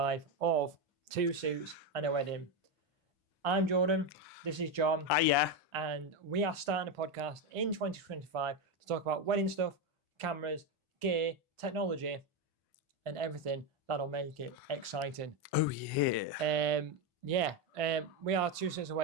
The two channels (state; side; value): normal; both; correlation 0.09